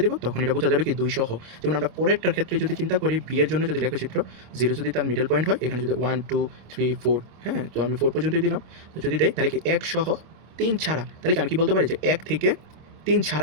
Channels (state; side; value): late; left; 26 ms